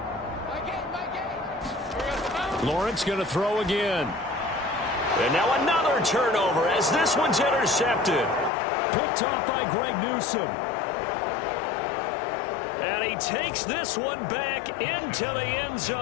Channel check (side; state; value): right; drops out; at 8.5 s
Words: Lawrence going to throw again. And now another turnover as this one's intercepted. Picked off by Greg Newsome. And he takes this one back into the end